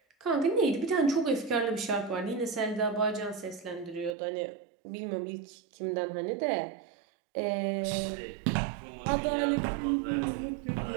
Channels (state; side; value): drops out; left; at 4.2 s